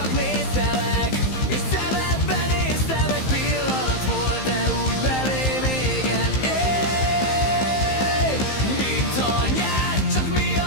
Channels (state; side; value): late; right; 15 ms